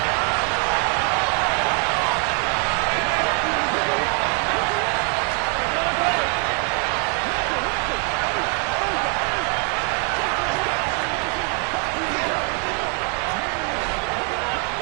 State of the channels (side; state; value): left; quieter; 35.9 dB